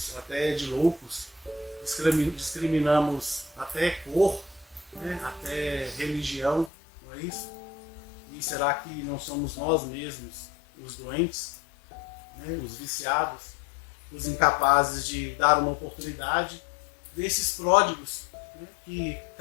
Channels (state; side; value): drops out; right; at 6.7 s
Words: até de loucos, discriminamos até cor, né, até religião, não é isso? E será que não somos nós mesmos os doentes, né, os viciados, os incapazes de dar uma oportunidade desses pródigos, né, que